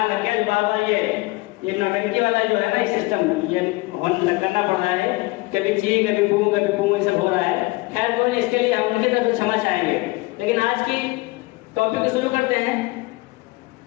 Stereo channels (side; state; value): right; quieter; 23.0 dB